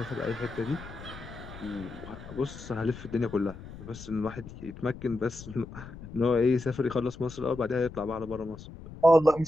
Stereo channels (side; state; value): left; noise; rumble, 14 dB below the sound